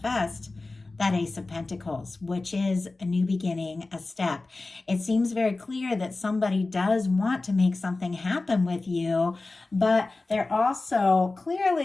that Ace of Pentacles, which is a new beginning, a step. It seems very clear that somebody does want to make something happen with you, but they're also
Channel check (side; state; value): right; quieter; 3.3 dB